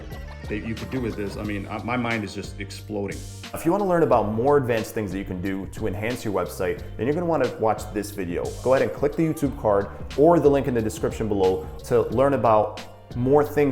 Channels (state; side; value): identical; both; correlation 1.00